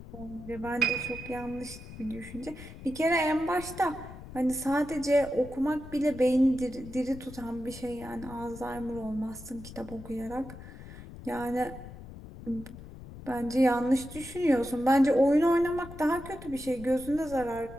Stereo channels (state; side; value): noise; left; rumble, 14 dB below the sound